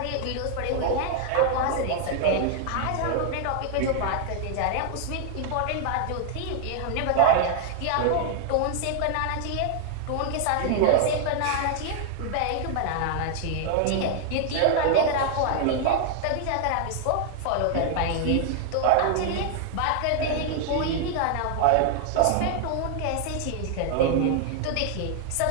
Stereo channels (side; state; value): both; different; correlation 0.00